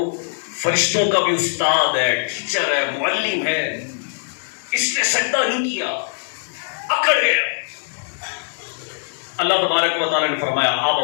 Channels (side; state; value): right; silent; digital silence